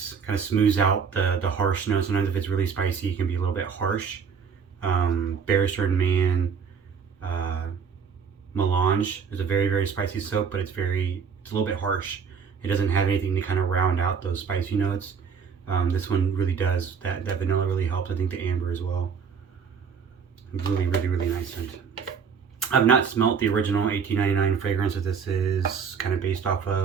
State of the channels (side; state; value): left; quieter; 6.4 dB